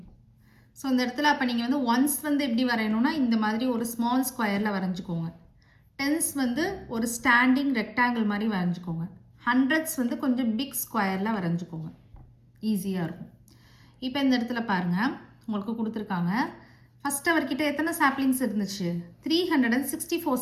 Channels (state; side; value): identical; both; correlation 1.00